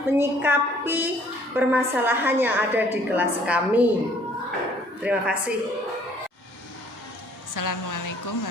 menyikapi permasalahan yang ada di kelas kami. Terima kasih. Assalamualaikum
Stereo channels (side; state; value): both; normal; correlation 0.59